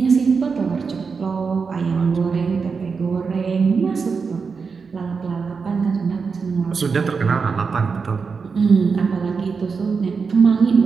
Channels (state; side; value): quieter; left; 5.2 dB